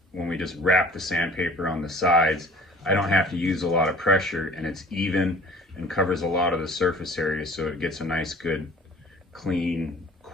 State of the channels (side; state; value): both; normal; correlation 0.48